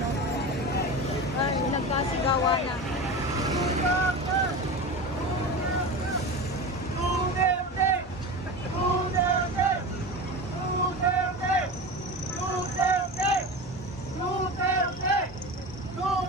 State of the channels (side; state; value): both; normal; correlation 0.27